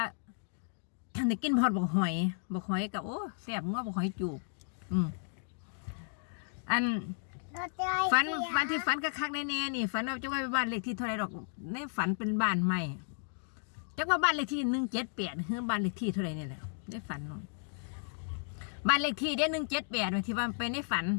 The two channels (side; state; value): right; silent; digital silence